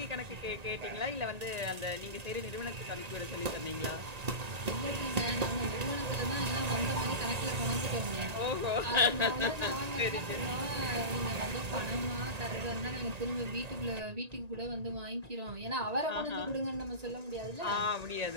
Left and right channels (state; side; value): late; left; 1.9 ms